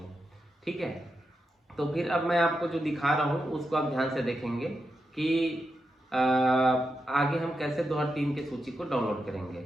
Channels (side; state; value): both; normal; correlation 0.86